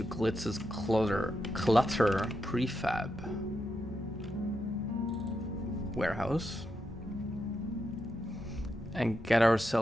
Glitz's Clutter prefab warehouse and get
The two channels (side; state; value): both; normal; correlation 0.85